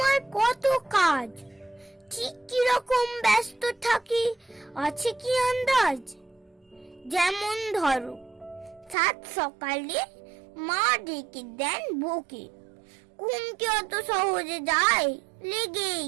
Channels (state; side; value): drops out; left; at 9.0 s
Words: কত কাজ, ঠিক কিরকম ব্যস্ত থাকি আছে কি আন্দাজ? যেমন ধরো, 7 সকালে মা ডেকে দেন বকে, ঘুম কি অত সহজে যায়? লেগেই